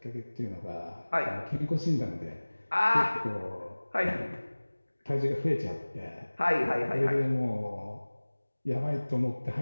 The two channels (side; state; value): both; inverted; correlation -1.00